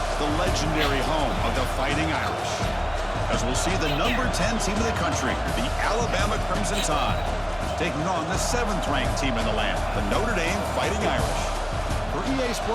the legendary home of the Fighting Irish. As we'll see the number 10 team in the country, the Alabama Crimson Tide, taking on the 7th-ranked team in the land, the Notre Dame Fighting Irish. For EA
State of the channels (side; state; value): both; identical; correlation 1.00